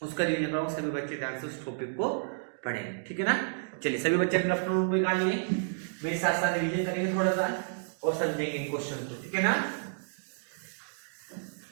उसका रिवीजन कराऊंगा, सभी बच्चे ध्यान से उस टॉपिक को पढ़ें, ठीक है ना। चलिए सभी बच्चे अपना नोटबुक निकालिए, मेरे साथ साथ रिवीजन करेंगे थोड़ा सा और समझेंगे इन क्वेश्चन को, ठीक है ना।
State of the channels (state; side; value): silent; left; digital silence